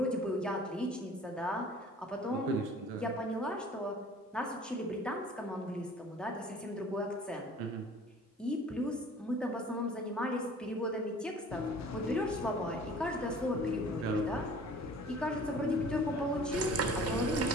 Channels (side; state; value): both; normal; correlation 0.48